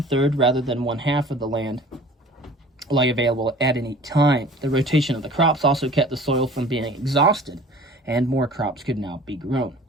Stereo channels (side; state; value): both; normal; correlation 0.46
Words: rather than 1/2 of the land lay available at any time. The rotation of the crops also kept the soil from being exhausted, and more crops could now be grown.